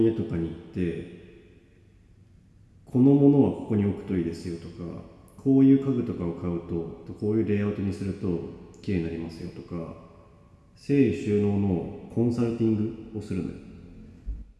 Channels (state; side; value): identical; both; correlation 1.00